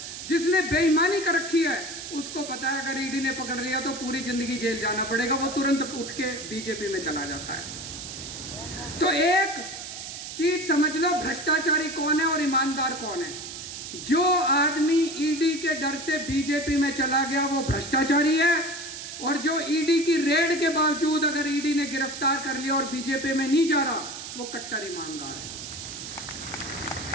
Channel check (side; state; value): right; noise; hiss, 9 dB below the sound